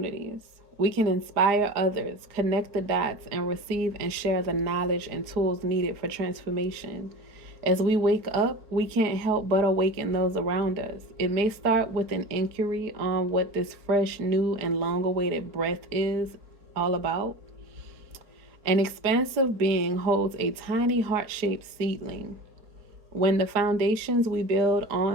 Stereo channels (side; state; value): left; late; 4.4 ms